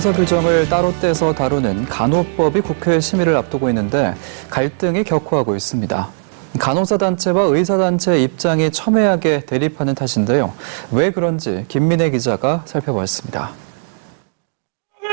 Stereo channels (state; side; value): silent; left; digital silence